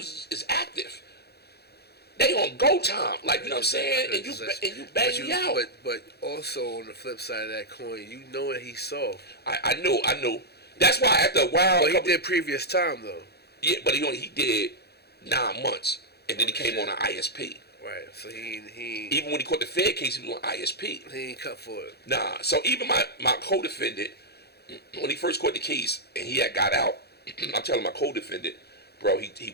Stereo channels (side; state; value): right; late; 0.47 ms